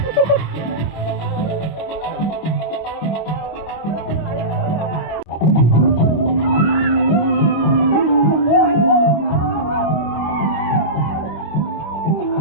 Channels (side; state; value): right; late; 25 ms